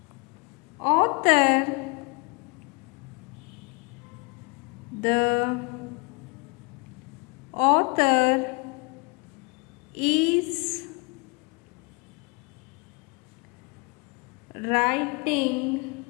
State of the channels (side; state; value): right; quieter; 29.6 dB